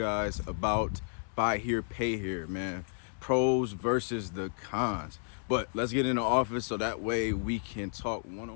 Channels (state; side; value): silent; right; 56 dB below the other